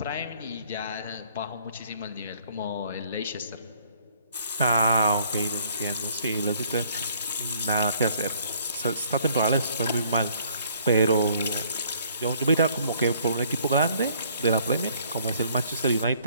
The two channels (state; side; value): inverted; both; correlation -0.62